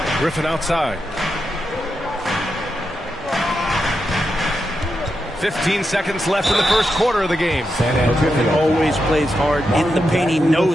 Griffin outside. 15 seconds left in the first quarter of the game. Griffin always plays hard in the paint. He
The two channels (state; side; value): normal; both; correlation 0.86